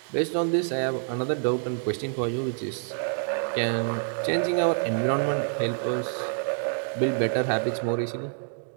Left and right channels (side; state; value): left; silent; digital silence